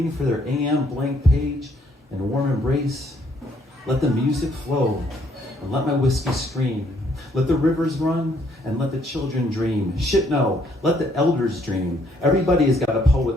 for their AM blank page and a warm embrace. Let the music flow, and let my whiskey scream. Let the rivers run, and let the children dream. Shit, no, let the elders dream. Everybody has got a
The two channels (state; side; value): normal; both; correlation 0.68